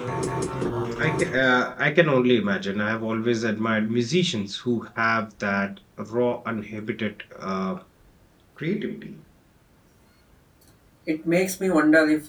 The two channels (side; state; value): both; identical; correlation 1.00